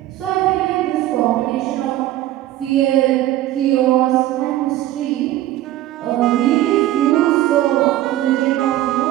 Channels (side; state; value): left; quieter; 14.6 dB